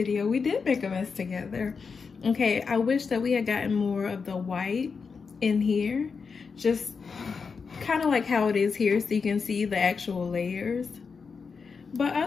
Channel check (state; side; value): quieter; right; 5.3 dB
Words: we did make a mess together. Okay, I wish that we had gotten more of the white in here. Just kind of like how it is here, so you can see the actual layers. But